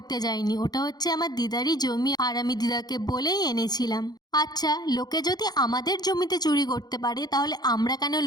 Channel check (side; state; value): right; late; 0.19 ms